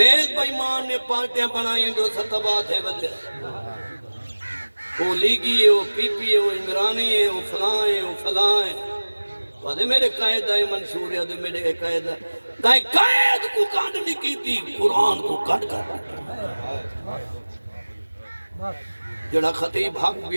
بائیمان نے پارٹیاں بنائیں جو ستبا تھے بدلے وہ لیگی ہے وہ پی پی ہے وہ عمرانی ہے وہ فلاں ہے وہ فلاں ہے وہاں میرے قائد آئے منشور ہے دے میرے قائد آئے قائد کو کانڈ نہیں کی تھی قرآن کو کٹ کر جڑا خطیب حق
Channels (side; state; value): both; inverted; correlation -1.00